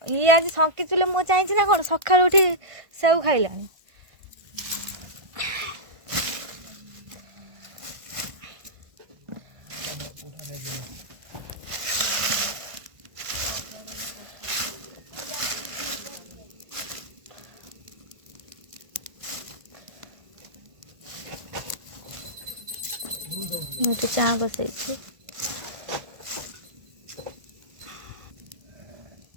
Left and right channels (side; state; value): left; late; 1.5 ms